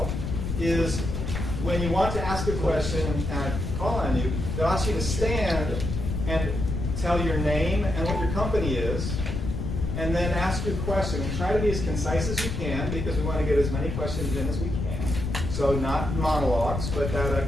is when you want to ask a question and I call on you, they'll ask you to stand and tell your name and what your company is, and then ask your question. And try to be as concise as you can, because we want to get as many questions in as we can. So not monologues, but a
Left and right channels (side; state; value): left; noise; rumble, 3 dB below the sound